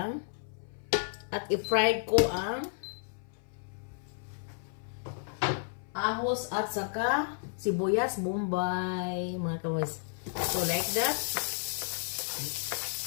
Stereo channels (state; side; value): silent; right; 56 dB below the other